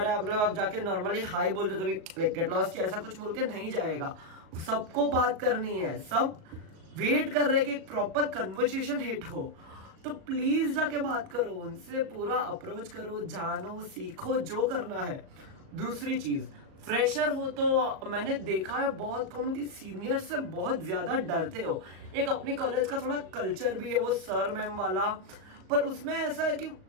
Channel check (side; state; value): left; late; 37 ms